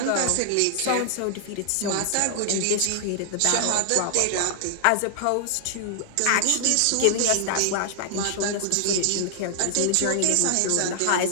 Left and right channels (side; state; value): both; different; correlation 0.00